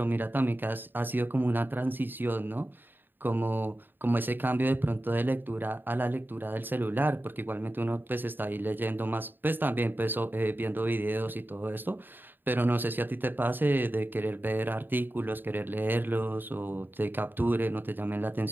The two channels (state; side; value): late; left; 0.094 ms